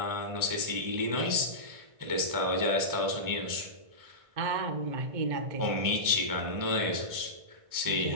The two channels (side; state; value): left; late; 1.6 ms